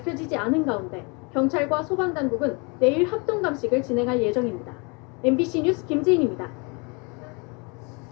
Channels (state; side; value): quieter; right; 31.3 dB